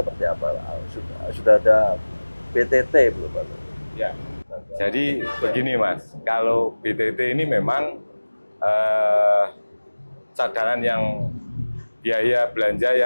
apa? Sudah ada BTT belum, Pak? Ya. Jadi begini Mas, kalau BTT ini memang cadangan yang biaya belanja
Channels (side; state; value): both; inverted; correlation -1.00